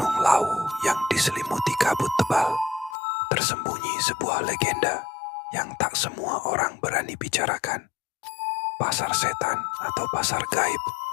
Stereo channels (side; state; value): right; drops out; at 3.0 s